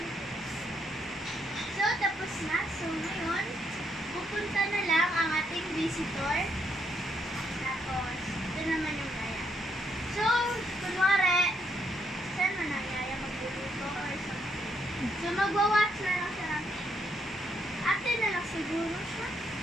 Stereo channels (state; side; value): normal; both; correlation 0.75